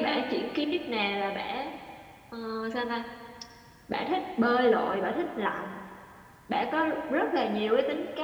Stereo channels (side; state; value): both; identical; correlation 1.00